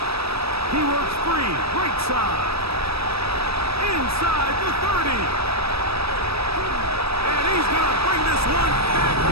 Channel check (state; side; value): late; left; 0.78 ms